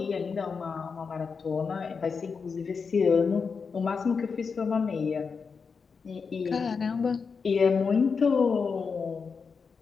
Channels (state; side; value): quieter; right; 5.4 dB